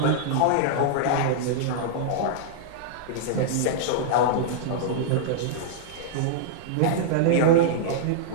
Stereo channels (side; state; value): both; different; correlation -0.02